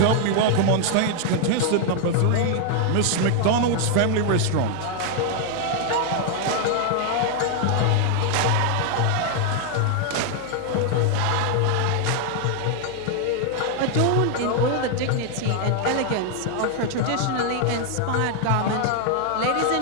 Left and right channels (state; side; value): different; both; correlation 0.00